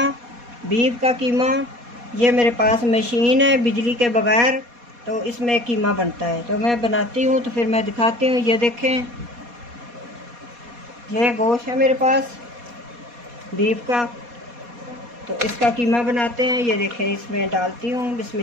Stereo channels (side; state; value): left; late; 4.2 ms